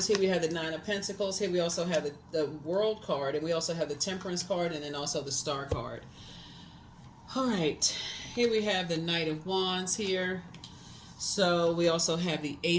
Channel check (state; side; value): identical; both; correlation 1.00